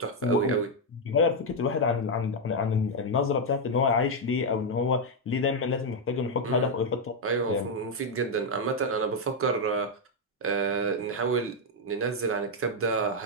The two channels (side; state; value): both; normal; correlation 0.00